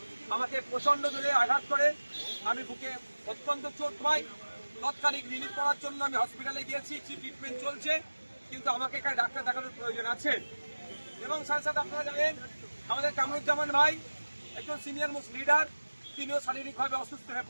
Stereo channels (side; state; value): both; inverted; correlation -1.00